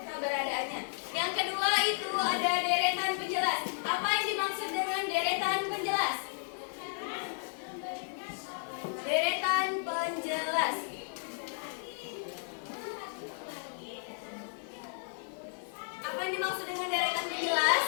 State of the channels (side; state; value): right; silent; 55 dB below the other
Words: Yang kedua itu ada deretan penjelas. Apa yang dimaksud dengan deretan penjelas? Deretan penjelas. Apa yang dimaksud dengan deretan penjelas?